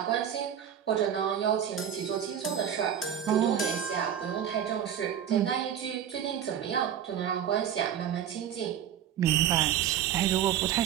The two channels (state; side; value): quieter; left; 9.4 dB